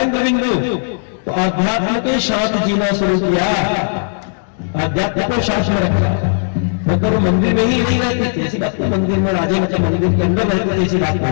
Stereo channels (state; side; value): silent; right; 69 dB below the other